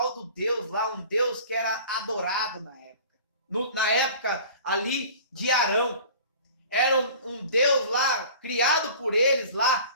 do Deus lá, um Deus que era adorado na época. Na época ali de Arão. Era um Deus lá, criado por eles lá,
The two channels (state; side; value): inverted; both; correlation -0.43